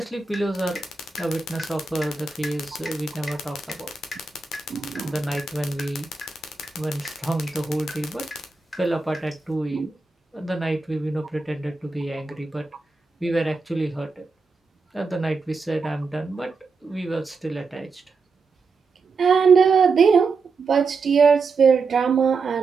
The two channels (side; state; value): left; quieter; 4.3 dB